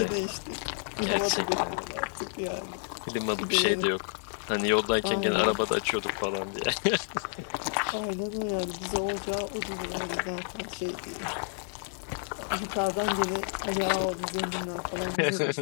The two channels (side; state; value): right; silent; 58 dB below the other